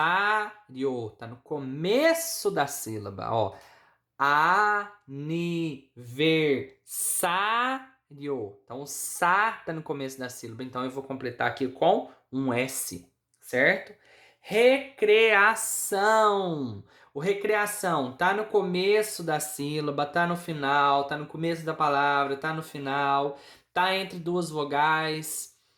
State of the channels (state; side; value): identical; both; correlation 1.00